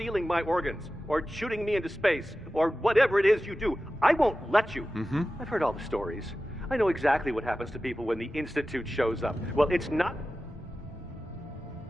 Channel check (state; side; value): normal; both; correlation 0.94